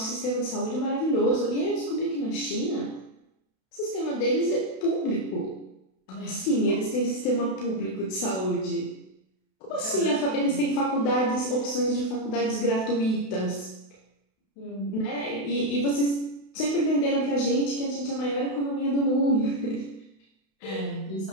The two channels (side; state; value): right; late; 32 ms